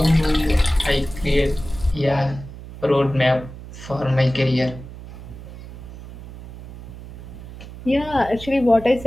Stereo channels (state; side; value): noise; right; hum, 14 dB below the sound